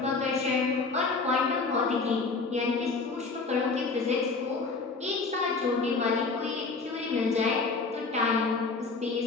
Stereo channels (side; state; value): right; quieter; 4.2 dB